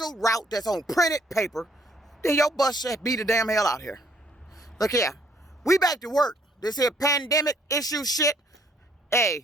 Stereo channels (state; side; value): normal; both; correlation 0.65